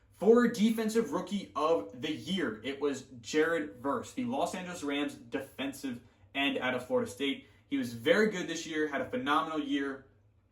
For Defensive Rookie of the Year, it was Jared Verse, the Los Angeles Rams defensive end out of Florida State. He was very good this year, had a phenomenal year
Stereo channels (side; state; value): both; identical; correlation 1.00